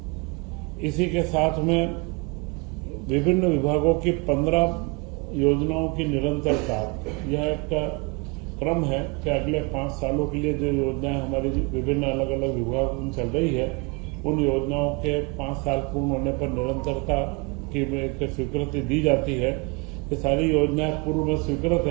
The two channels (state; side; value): quieter; left; 29.0 dB